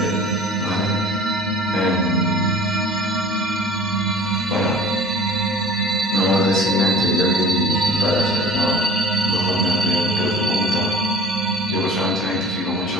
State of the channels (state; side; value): normal; both; correlation 0.44